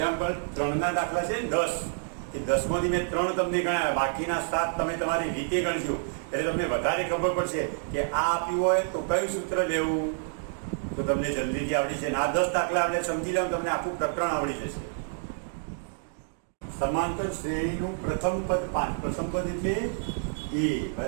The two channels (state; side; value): silent; left; digital silence